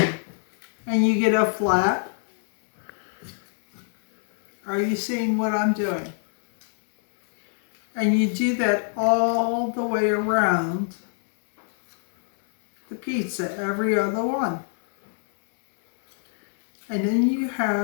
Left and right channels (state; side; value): silent; right; 61 dB below the other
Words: you get a flap. Are you seeing what I'm doing? And you do that all the way around the pizza, every other one. And then you